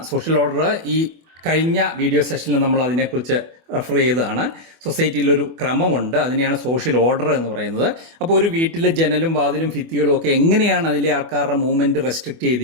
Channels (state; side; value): late; left; 24 ms